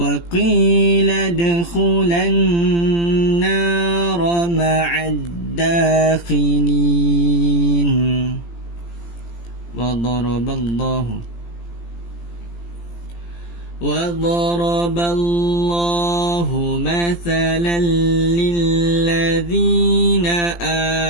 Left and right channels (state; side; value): late; right; 17 ms